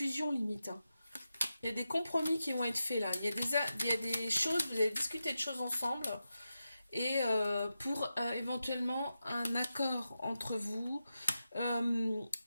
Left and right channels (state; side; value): inverted; both; correlation -0.90